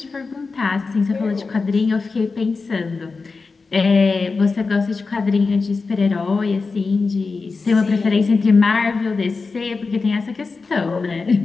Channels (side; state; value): right; quieter; 4.3 dB